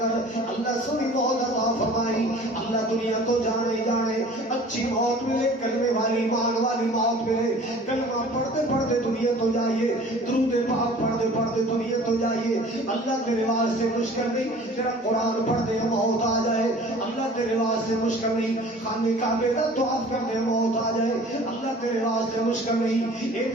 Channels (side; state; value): both; normal; correlation 0.46